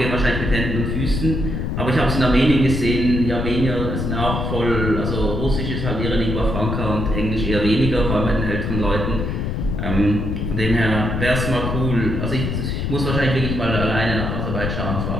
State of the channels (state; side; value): noise; left; rumble, 2 dB below the sound